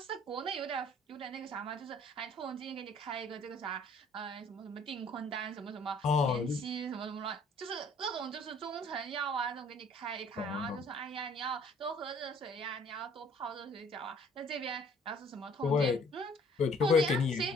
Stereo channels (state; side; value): normal; both; correlation 0.57